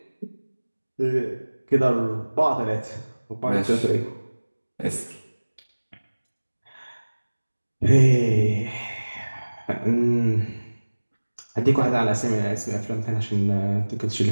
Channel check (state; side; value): inverted; both; correlation -1.00